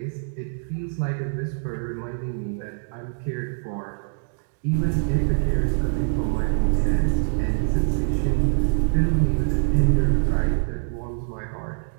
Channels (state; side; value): silent; left; digital silence